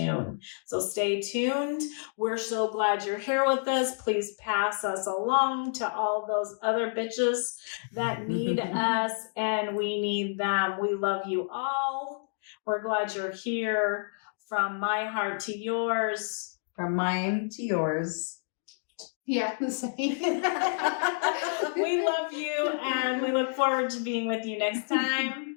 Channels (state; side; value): silent; right; digital silence